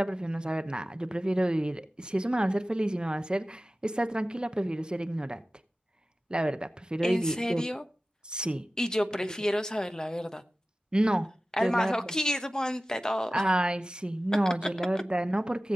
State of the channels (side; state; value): both; normal; correlation 0.96